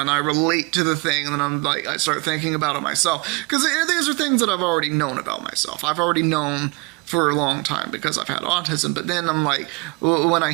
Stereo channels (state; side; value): quieter; left; 28.2 dB